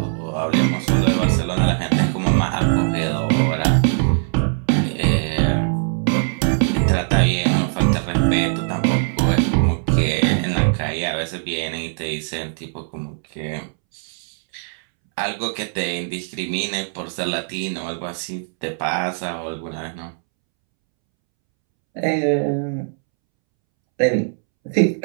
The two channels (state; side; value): silent; left; 65 dB below the other